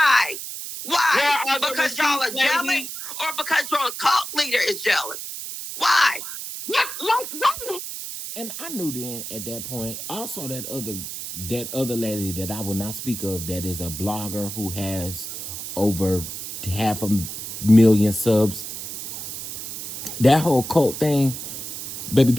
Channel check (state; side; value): noise; right; hiss, 7 dB below the sound